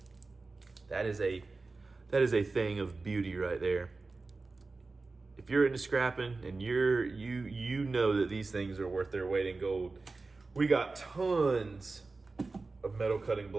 That is a thing of beauty right there. If you're into scrapping and you know that these things are worth their weight in gold. We got tons of metal cutting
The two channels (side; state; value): left; quieter; 3.7 dB